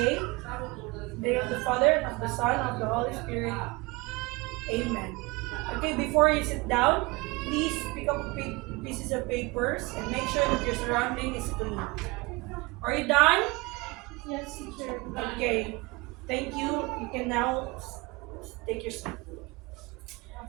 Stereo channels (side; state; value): left; quieter; 25.0 dB